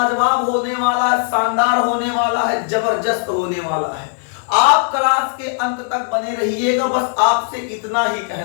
होने वाला है, शानदार होने वाला है, जबरदस्त होने वाला है। आप क्लास के अंत तक बने रहिएगा। बस आपसे इतना ही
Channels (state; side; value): silent; right; digital silence